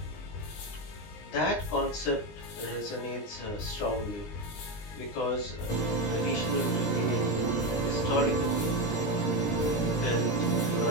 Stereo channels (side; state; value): right; late; 19 ms